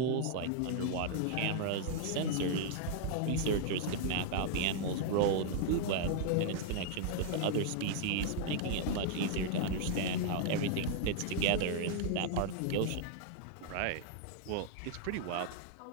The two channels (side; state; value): both; different; correlation -0.01